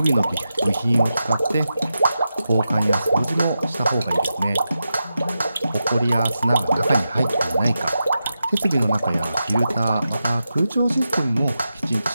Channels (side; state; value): both; inverted; correlation -0.89